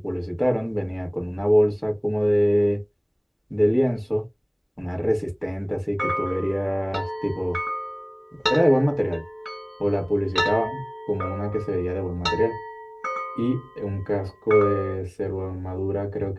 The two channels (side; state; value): both; identical; correlation 1.00